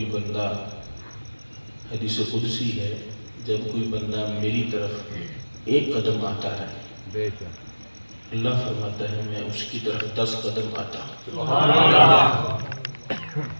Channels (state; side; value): inverted; both; correlation -1.00